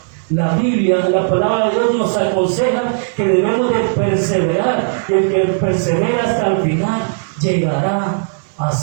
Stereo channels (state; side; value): silent; left; digital silence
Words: La Biblia, la palabra de Dios nos aconseja que debemos de perseverar, y el que persevera hasta el final llegará a